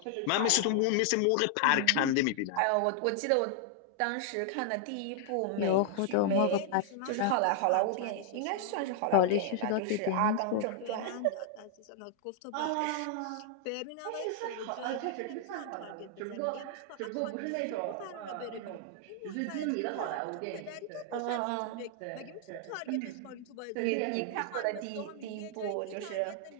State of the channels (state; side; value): different; both; correlation -0.01